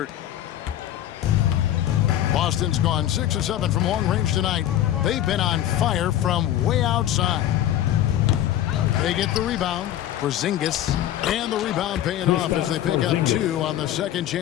Boston's gone 6 of 7 from long range tonight. They've been on fire from way outside. They get the rebound. Porzingis, and the rebound paying off as they pick up 2 on the second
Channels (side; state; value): right; quieter; 12.2 dB